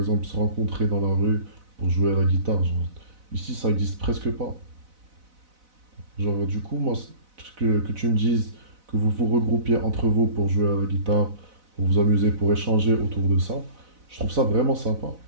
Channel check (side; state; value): left; late; 4.0 ms